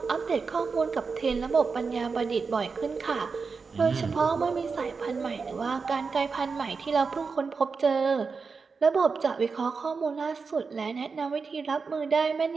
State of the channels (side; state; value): left; quieter; 4.9 dB